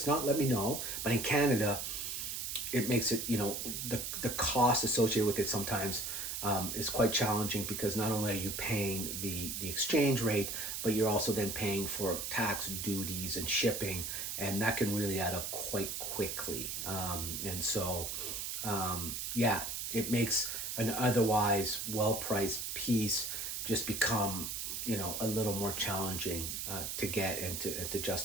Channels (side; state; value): right; noise; hiss, 4 dB below the sound